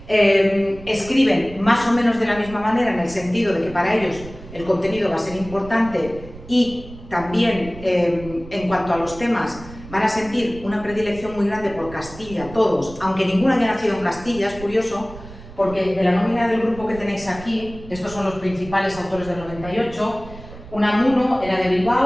Escriben más o menos de la misma manera en el sentido de que para ellos el contenido va a ser importante y también en cuanto a los temas van a sentir una predilección muy grande por Castilla, todos, aunque ninguno haya nacido en Castilla, es curioso, porque de la nómina del grupo que tenéis aquí, estos son los principales autores del 98, Unamuno era de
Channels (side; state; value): right; noise; rumble, 16 dB below the sound